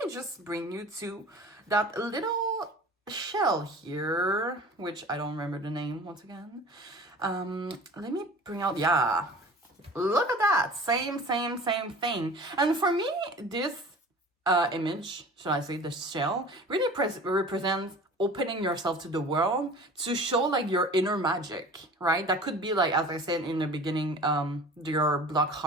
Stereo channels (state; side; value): normal; both; correlation 0.41